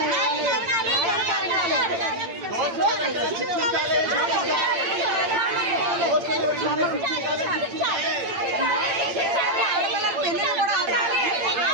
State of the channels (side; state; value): left; late; 8.8 ms